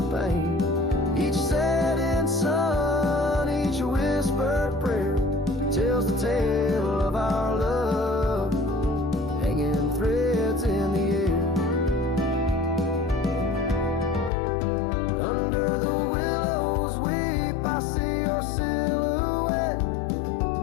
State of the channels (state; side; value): drops out; right; at 14.3 s